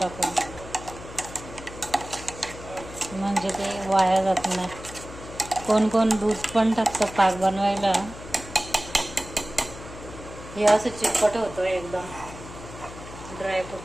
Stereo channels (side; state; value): left; noise; hum, 14 dB below the sound